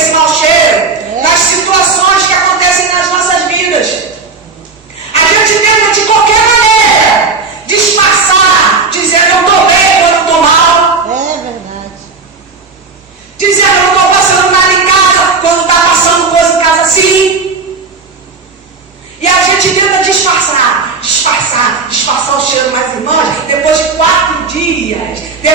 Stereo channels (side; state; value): left; quieter; 4.4 dB